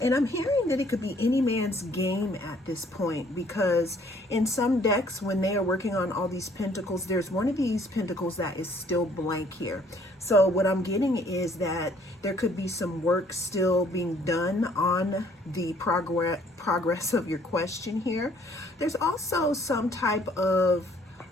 And I'm hearing that it could be any man's game at this point, because in some decks, when they are working on all these pentacles, there's one of these pentacles that is still blank here. So what I'm getting is that there could be some work still being done on the progress of your question here. There's also some type of,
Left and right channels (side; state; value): both; normal; correlation 0.61